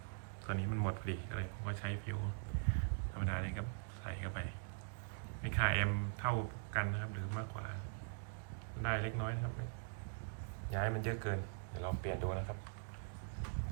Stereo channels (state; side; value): silent; left; digital silence